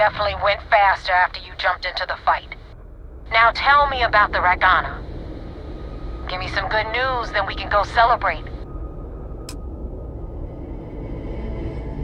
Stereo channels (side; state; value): both; identical; correlation 1.00